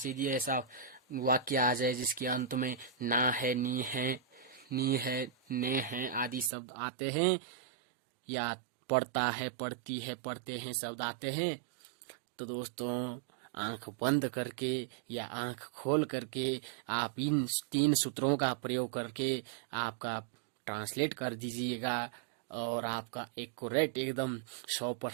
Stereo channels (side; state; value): left; drops out; at 6.5 s